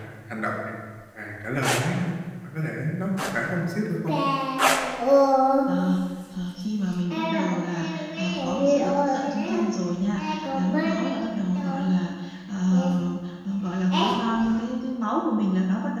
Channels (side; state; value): both; identical; correlation 1.00